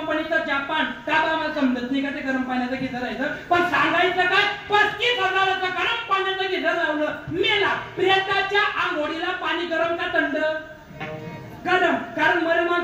जापान. का बा मला समजत नाही का ते गरम पाण्याचं गिझर आहे. पण सांगायचं काय, 35,000चं गरम पाण्याचं गिझर लावलं. मेला. प्रेताच्या आंघोळीला पाणी गरम का थंड? गरम. कारण मरे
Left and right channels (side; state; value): both; identical; correlation 1.00